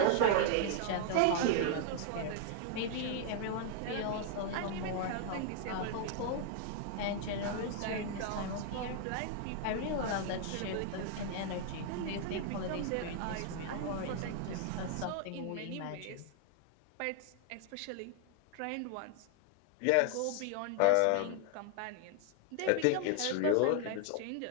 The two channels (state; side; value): different; both; correlation 0.00